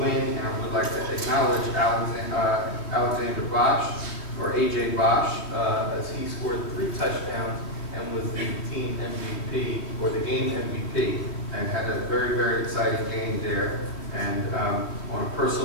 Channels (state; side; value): late; right; 3.2 ms